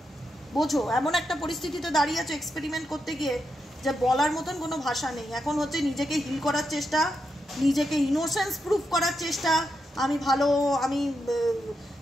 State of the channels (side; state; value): both; normal; correlation 0.84